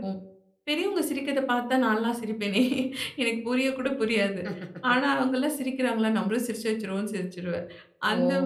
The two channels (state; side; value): identical; both; correlation 1.00